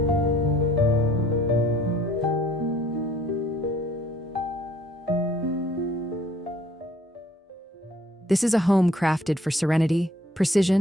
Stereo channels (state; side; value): normal; both; correlation 0.58